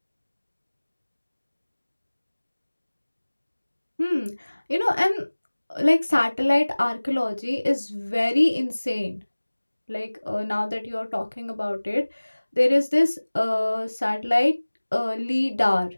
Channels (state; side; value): inverted; both; correlation -1.00